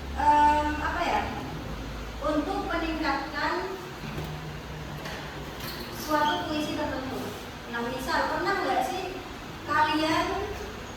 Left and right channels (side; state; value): both; identical; correlation 1.00